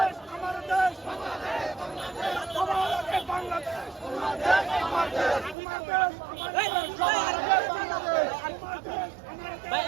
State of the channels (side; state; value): left; drops out; at 5.6 s